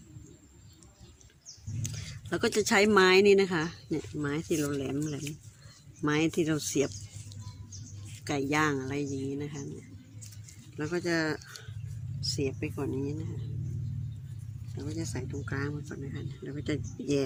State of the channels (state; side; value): identical; both; correlation 1.00